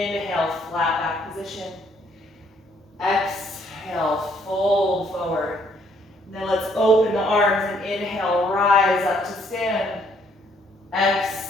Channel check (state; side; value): normal; both; correlation 0.67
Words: flat back position. Exhale, fold forward. Now let's open the arms and inhale, rise up to stand.